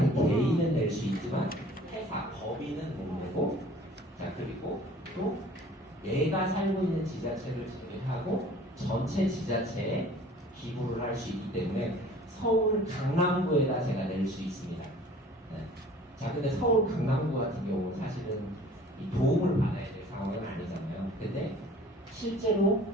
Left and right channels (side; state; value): both; normal; correlation 0.49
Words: 개인은 낼 수 있지만 회사, 법인은 못 내고 자, 그리고 또 내가 살고 있는 지자체를 제외하고 전체 지자체에 기부를 할 수 있기 때문에 서울 강남구에다 제가 낼 수 있습니다. 네. 자, 근데 서울 강남구 같은 경우는 사실은 이 도움을 받아야 될 상황은 아니잖아요. 근데 실제로